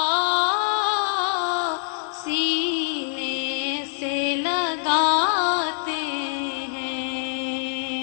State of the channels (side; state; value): right; silent; digital silence